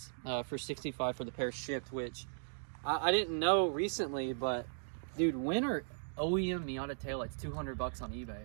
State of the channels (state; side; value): silent; left; digital silence